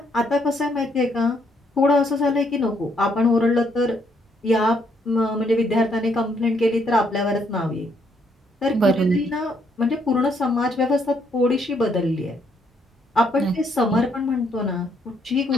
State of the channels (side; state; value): both; normal; correlation 0.71